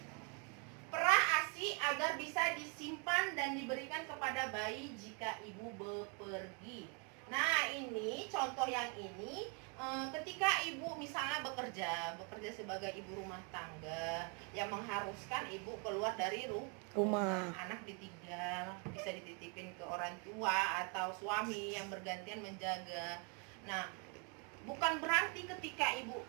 perah ASI agar bisa disimpan dan diberikan kepada bayi jika ibu bepergi. Nah, ini contoh yang ini ketika ibu misalnya bekerja sebagai ibu rumah tangga yang mengharuskan ibu keluar dari rumah, anak ditinggal, bisa dititipin ke orang tua atau suami yang bergantian menjaga. Nah, bukan berarti ketika ibu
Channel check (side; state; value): left; quieter; 34.8 dB